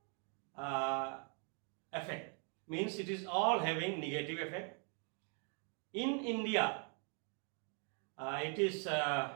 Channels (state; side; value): quieter; left; 39.3 dB